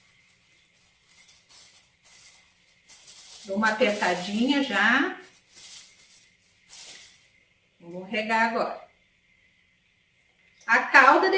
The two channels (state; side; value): identical; both; correlation 1.00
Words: Dou uma apertadinha já. Vou regar agora. A calda